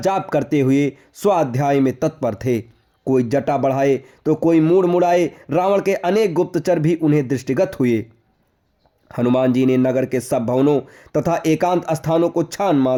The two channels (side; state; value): both; identical; correlation 1.00